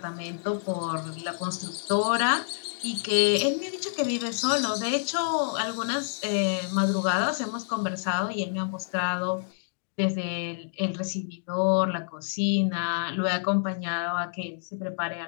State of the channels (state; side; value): silent; right; digital silence